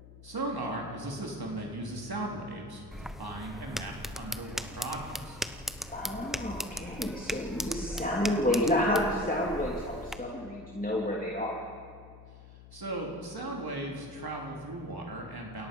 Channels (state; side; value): noise; left; hum, 18 dB below the sound